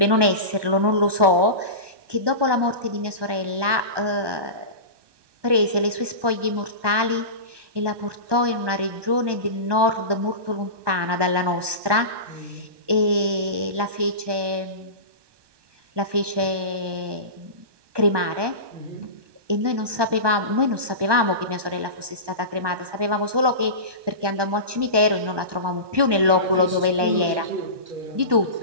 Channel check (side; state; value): left; late; 1.2 ms